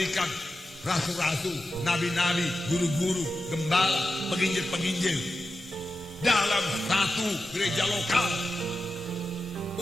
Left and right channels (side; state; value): both; normal; correlation 0.91